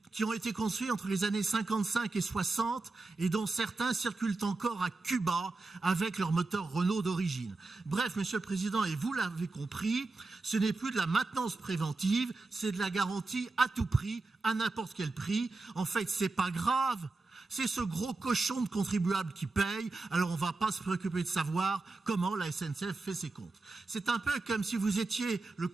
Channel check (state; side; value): quieter; left; 3.5 dB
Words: qui ont été construits entre les années 55 et 60 et dont certains circulent encore à Cuba avec leur moteur Renault d'origine. Bref, Monsieur le Président, et vous l'avez compris, ce n'est plus de la maintenance préventive, c'est de la garantie à tout prix, à n'importe quel prix. En fait, c'est pas grave. C'est ce gros cochon de contribuable qui paye, alors on ne va pas se préoccuper de savoir comment la SNCF fait ses comptes. C'est un peu comme si vous étiez le